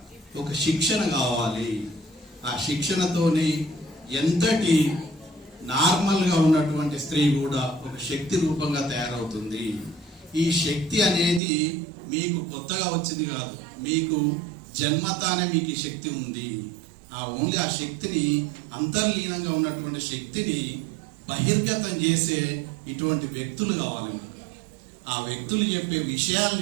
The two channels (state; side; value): drops out; left; at 11.4 s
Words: ఒక శిక్షణ కావాలి. ఆ శిక్షణతోని ఎంతటి నార్మల్గా ఉన్నటువంటి స్త్రీ కూడా ఒక శక్తి రూపంగా తయారవుతుంది. ఈ శక్తి అనేది మీకు కొత్తగా వచ్చింది కాదు, మీకు జన్మతానే మీకు ఈ శక్తి ఉంది. ఓన్లీ ఆ శక్తిని, అంతర్లీనంగా ఉన్నటువంటి శక్తిని బహిర్గతం చేసే ఇటువంటి వ్యక్తులు కావాలి మీకు. ఆ వ్యక్తులు చెప్పే